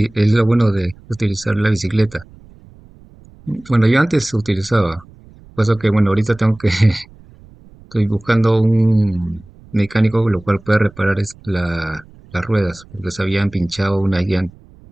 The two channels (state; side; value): noise; right; rumble, 24 dB below the sound